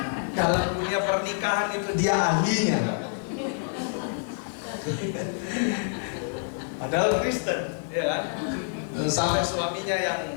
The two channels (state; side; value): silent; right; 60 dB below the other